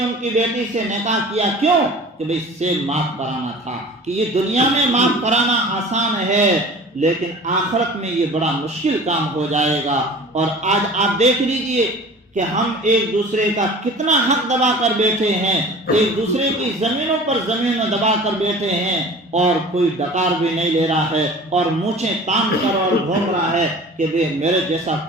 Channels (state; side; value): normal; both; correlation 0.42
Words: کی بیٹی سے نکاح کیا۔ کیوں؟ کہ بھئی سیب معاف کرانا تھا، کہ یہ دنیا میں معاف کرانا آسان ہے لیکن آخرت میں یہ بڑا مشکل کام ہو جائے گا۔ اور آج آپ دیکھ لیجئے کہ ہم ایک دوسرے کا کتنا حق دبا کر بیٹھے ہیں، ایک دوسرے کی زمینوں پر زمینوں دبا کر بیٹھے ہیں، اور کوئی ڈکار بھی نہیں لے رہا ہے، اور مونچھیں تان کر اور گھوم رہا ہے کہ بے میرے جیسا